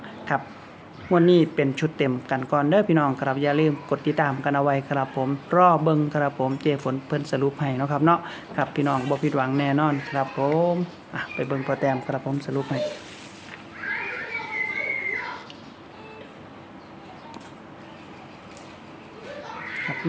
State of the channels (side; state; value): both; identical; correlation 1.00